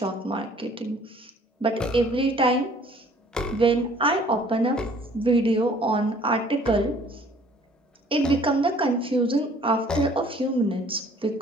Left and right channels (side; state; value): both; normal; correlation 0.55